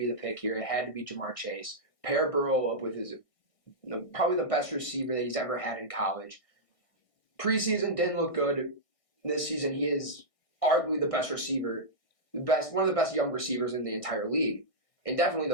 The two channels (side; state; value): right; late; 1.6 ms